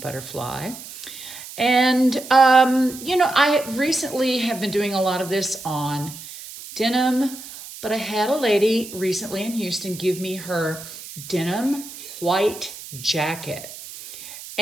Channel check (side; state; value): right; noise; hiss, 14 dB below the sound